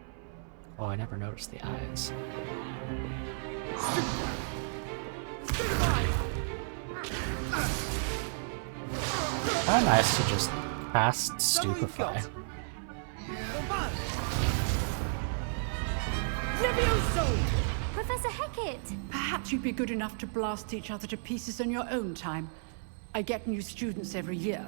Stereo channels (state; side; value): silent; left; 56 dB below the other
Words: Oh, I never noticed the eyes. How nice to just cast Stupefy. Professor Hecat! Perhaps you'd be good enough to blast each other to pieces in your own time. I get new students every year,